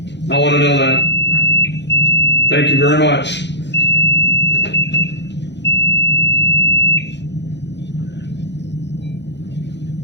I want to know that. Thank you very much.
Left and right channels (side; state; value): right; late; 0.51 ms